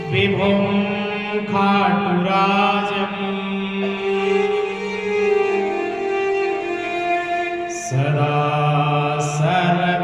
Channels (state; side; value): noise; right; rumble, 26 dB below the sound